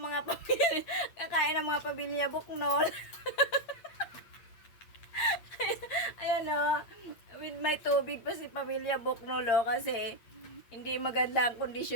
mga pamilya Buknol. Ayan o, with my tubig pa si pamilya Buknol o, kasi hindi maganda ang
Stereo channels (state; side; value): late; right; 8.6 ms